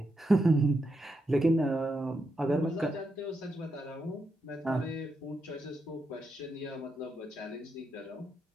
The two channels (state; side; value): normal; both; correlation 0.83